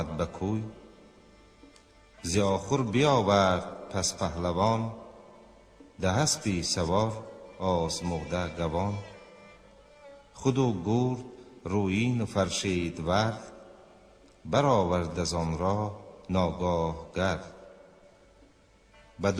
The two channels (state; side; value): identical; both; correlation 1.00